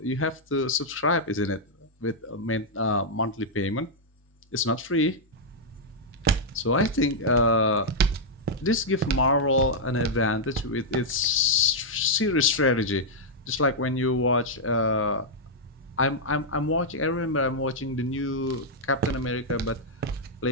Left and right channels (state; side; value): normal; both; correlation -0.05